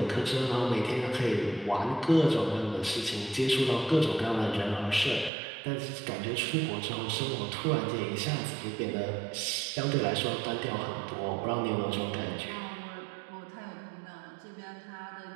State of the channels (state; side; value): drops out; left; at 5.3 s